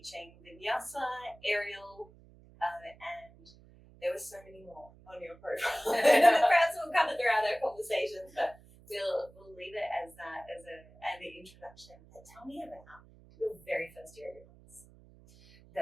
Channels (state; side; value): noise; right; hum, 24 dB below the sound